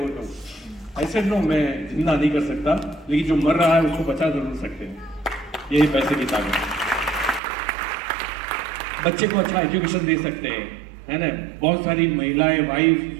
तो? ऐसे नो, मैं जिंदा नहीं कर सकता, लेकिन जो मर रहा है उसको बचा जरूर सकते हैं। यही पैसे की ताकत है। बच्चे को अच्छा एजुकेशन दे सकते हैं, है ना। बहुत सारी महिलाएं, वाइफ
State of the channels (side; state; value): left; drops out; at 7.4 s